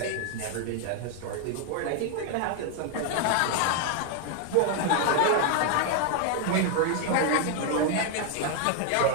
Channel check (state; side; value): different; both; correlation 0.00